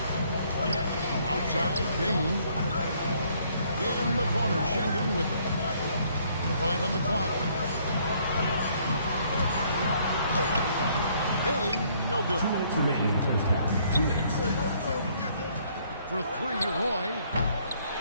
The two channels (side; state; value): both; inverted; correlation -0.65